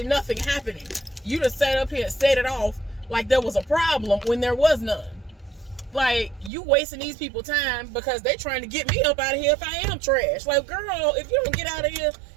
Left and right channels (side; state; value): left; drops out; at 6.5 s